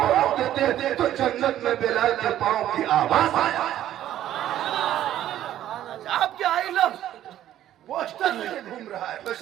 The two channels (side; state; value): left; quieter; 12.3 dB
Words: रख देते तो जन्नत में बिलाल के पाँव की आवाज आया। आप क्या आई लव पोस्टर लेके घूम रहा है,